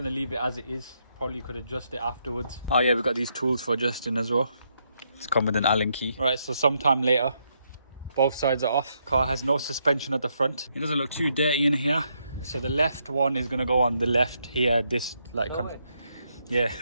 leave it as it is. Probably could adjust it afterwards. Oh yeah, we've got these tools for adjusting as well. It's come with an Allen key. Right, so sometime later, both sides are off. Car has no suspension at the front. It doesn't look too dirty in here. So the left one is gonna go on the left here. This like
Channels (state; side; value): inverted; both; correlation -0.77